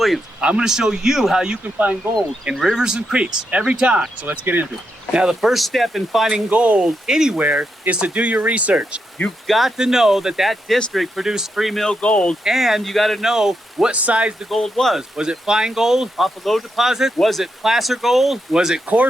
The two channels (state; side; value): normal; both; correlation 0.83